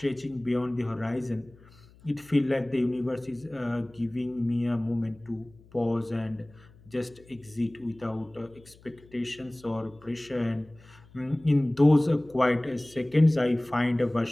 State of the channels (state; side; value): noise; left; hum, 25 dB below the sound